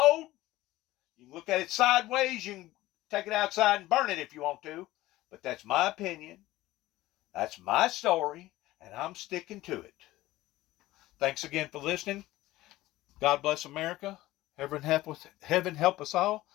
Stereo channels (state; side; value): quieter; right; 17.0 dB